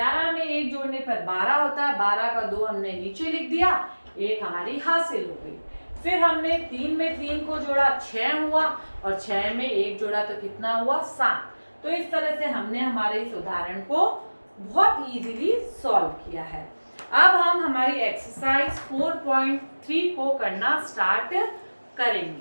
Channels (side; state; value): both; inverted; correlation -1.00